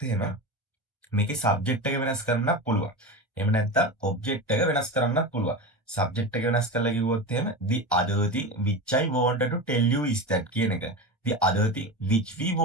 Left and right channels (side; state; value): both; normal; correlation 0.24